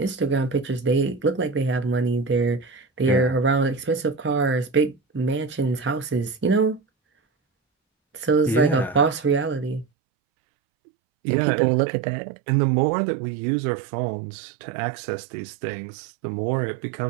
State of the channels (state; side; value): drops out; left; at 9.9 s